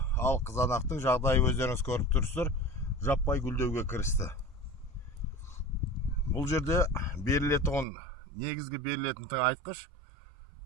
ал қызанақтың жағдайы өздеріңіз көріп тұрсыздар, жаппай гүлдеуге кірісті. Бұл жерде берілетін, негізгі берілетін тыңайтқыш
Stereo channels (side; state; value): left; drops out; at 7.9 s